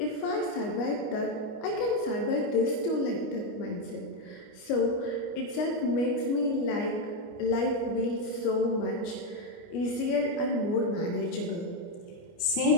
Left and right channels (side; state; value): right; late; 29 ms